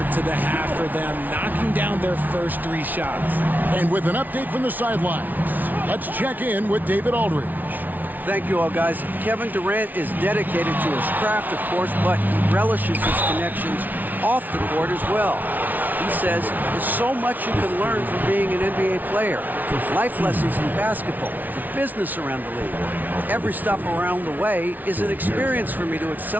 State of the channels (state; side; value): late; left; 0.081 ms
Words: to the half for them, knocking down their first 3 shots. And with an update from the sidelines, let's check in with David Aldridge. Thank you all, guys. Kevin Durant is dedicated to his craft, of course, but he relishes his connections off the court as well. He says there's so much you can learn from being an NBA player. Life lessons in basketball, the business around the league. Every stop around the way is an experience for me to